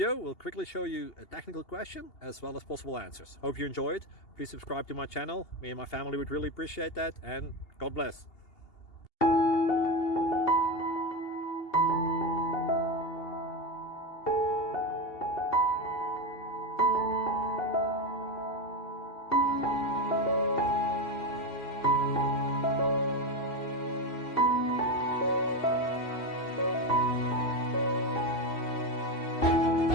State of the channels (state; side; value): late; right; 2.8 ms